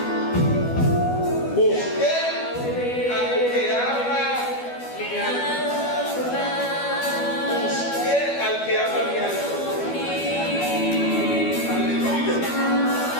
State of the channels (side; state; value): right; late; 12 ms